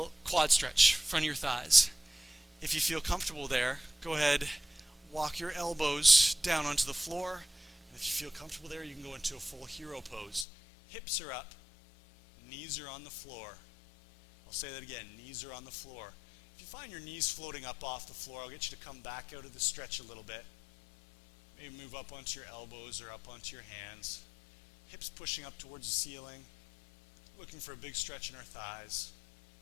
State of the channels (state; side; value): drops out; right; at 10.5 s